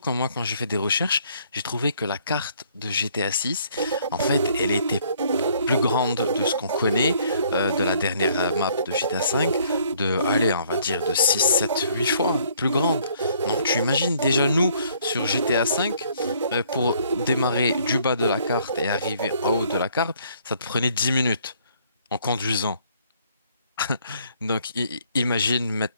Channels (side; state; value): both; inverted; correlation -0.63